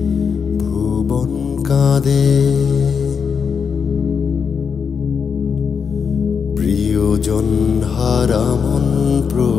ভুবন কাঁদে। প্রিয়জন হারা মন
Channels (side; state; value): right; quieter; 6.3 dB